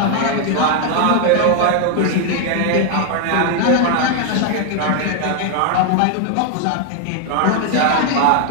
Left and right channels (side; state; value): both; different; correlation 0.00